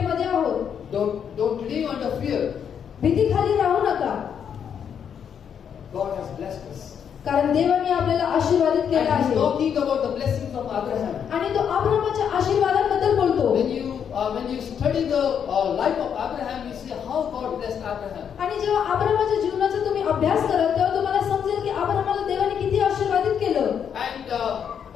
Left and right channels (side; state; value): right; quieter; 7.9 dB